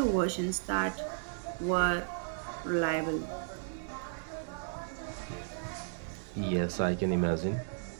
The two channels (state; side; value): silent; left; digital silence